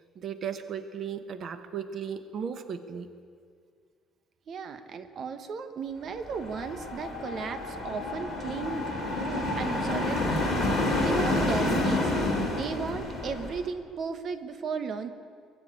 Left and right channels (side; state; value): both; normal; correlation 0.57